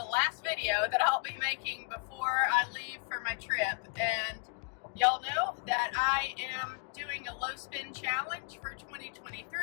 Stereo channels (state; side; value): quieter; right; 37.0 dB